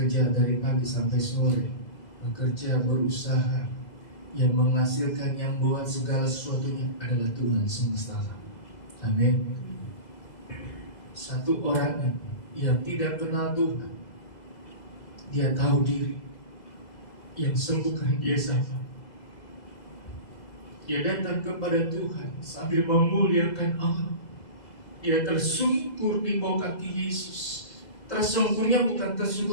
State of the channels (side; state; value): right; late; 2.0 ms